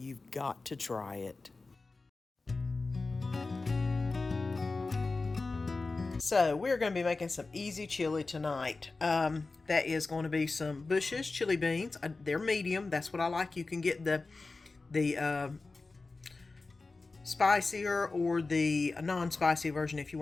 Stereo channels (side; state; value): right; quieter; 3.7 dB